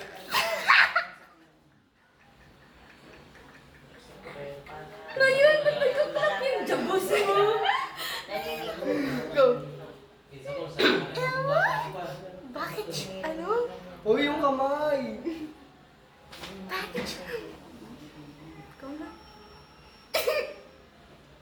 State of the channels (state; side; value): identical; both; correlation 1.00